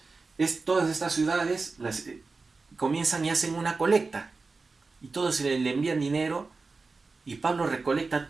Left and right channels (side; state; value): left; quieter; 4.0 dB